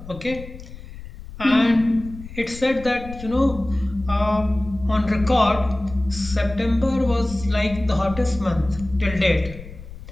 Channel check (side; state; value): left; noise; rumble, 14 dB below the sound